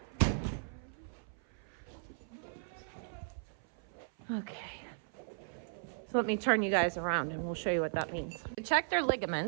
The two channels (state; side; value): silent; left; 53 dB below the other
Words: Okay. So let me turn you guys around and we'll show you what that means. To check their